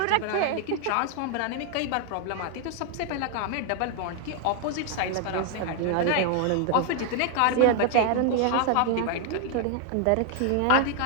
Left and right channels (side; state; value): both; different; correlation 0.00